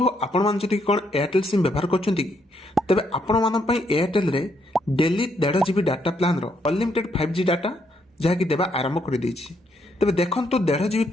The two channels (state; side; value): normal; both; correlation 0.74